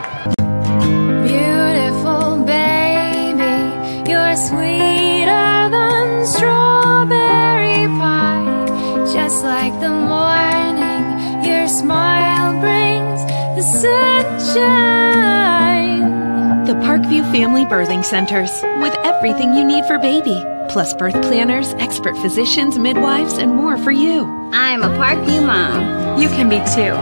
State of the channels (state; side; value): inverted; both; correlation -1.00